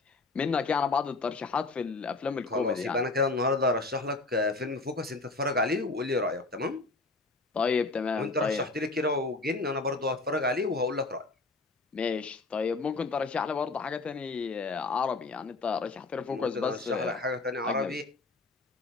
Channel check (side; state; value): right; quieter; 3.5 dB